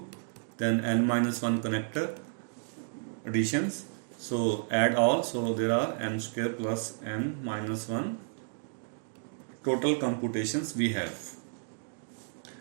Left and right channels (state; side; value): silent; left; digital silence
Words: then n minus 1 connector additions. So add all, so there are n square plus n minus 1 total computations we have.